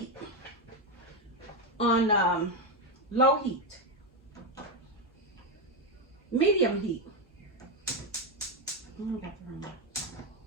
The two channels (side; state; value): both; normal; correlation 0.08